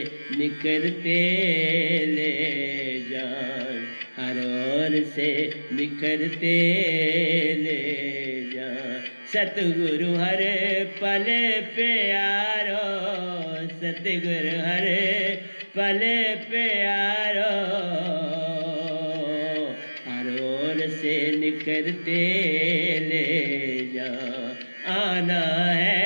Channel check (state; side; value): inverted; both; correlation -1.00